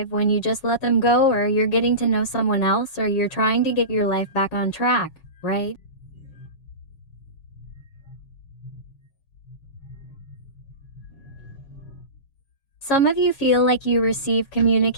when you just let them go, or you're getting to know someone else, or you're trying to get your life back on track, right? Some of you feel like you receive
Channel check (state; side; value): late; right; 7.3 ms